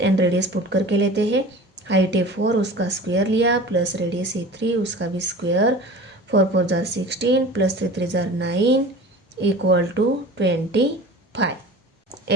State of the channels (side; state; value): both; normal; correlation 0.38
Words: एंड रेडियस पुट करके लेते हैं। हाइट है 4, उसका स्क्वायर लिया, प्लस रेडियस है 3, उसका भी स्क्वायर। 4 4 जार 16 प्लस 3 3 जार 9 इक्वल टू 25।